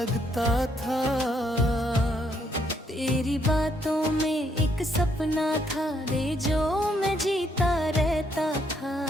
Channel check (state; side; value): normal; both; correlation 0.72